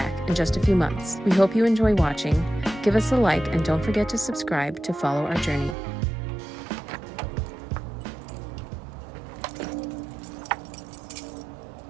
in just a few months. We hope you enjoy watching. Give us a like and don't forget to subscribe to follow our journey.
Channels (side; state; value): left; drops out; at 5.8 s